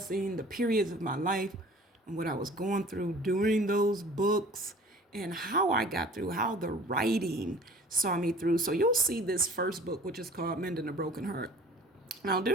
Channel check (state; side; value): normal; both; correlation 0.46